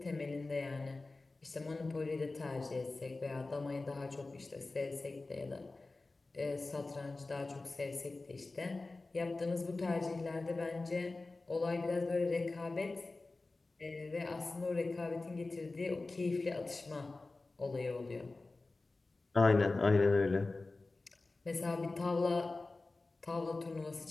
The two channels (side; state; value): right; quieter; 3.4 dB